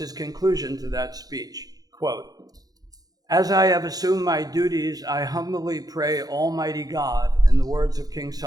conclusion to that speech, quote, as I have assumed my duties, I humbly pray Almighty God, in the words of King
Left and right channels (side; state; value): left; late; 0.18 ms